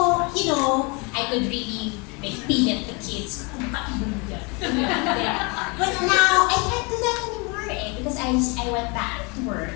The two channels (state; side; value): quieter; right; 30.4 dB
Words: I could really like feed the kids. But now, I can't do that anymore because I went back to work.